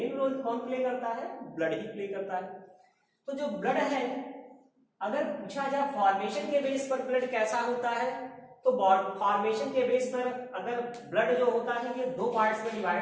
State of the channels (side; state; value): both; identical; correlation 1.00